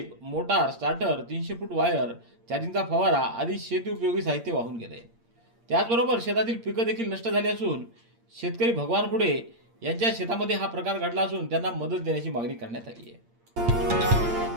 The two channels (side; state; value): left; late; 8.6 ms